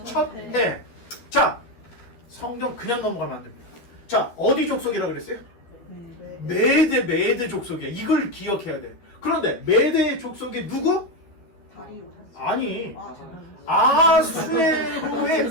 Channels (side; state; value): right; late; 12 ms